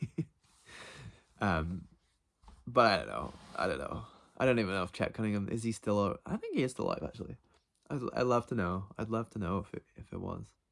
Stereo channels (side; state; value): both; identical; correlation 1.00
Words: But I don't know. I don't even know if Chet Cunningham, is he still? I think he is still alive, actually. I'd love to know. I'd love to know if it was.